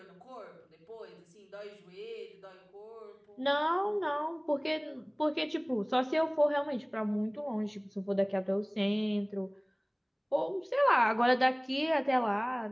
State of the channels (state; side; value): identical; both; correlation 1.00